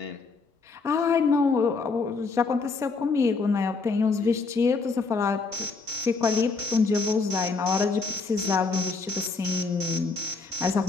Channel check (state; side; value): quieter; right; 4.3 dB